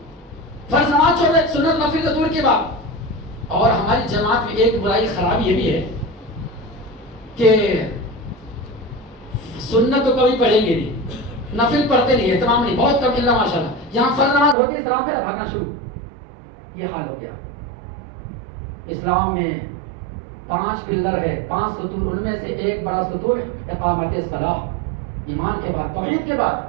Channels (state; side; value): drops out; left; at 14.6 s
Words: فرض نماز چھوڑ دے، سنت نفل تو دور کی بات. اور ہماری جماعت میں ایک برائی خرابی یہ بھی ہے کہ سنت تو کبھی پڑھیں گے نہیں، نفل پڑھتے نہیں، اہتمام نہیں، بہت کم اللہ ماشاءاللہ. یہاں فرض نماز ہوتی ہے، سلام پھر بھاگنا شروع. یہ حال ہو گیا. اسلام میں 5 پلر ہے، 5 ستون، ان میں سے ایک بڑا ستون اقامت الصلاۃ. ایمان کے بعد، توحید کے